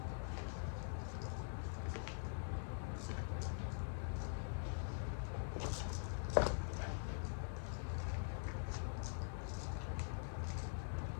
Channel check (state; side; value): silent; right; digital silence